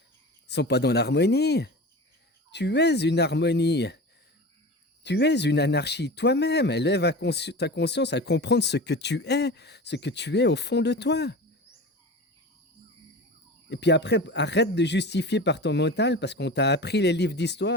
ils sont pas dans l'harmonie. Tu es une harmonie, tu es une anarchie toi-même. Élève ta conscience à comprendre ce que tu es au fond de toi. Et puis après, arrête de justifier par ton mental parce qu'on t'a appris les livres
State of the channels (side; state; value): both; normal; correlation 0.32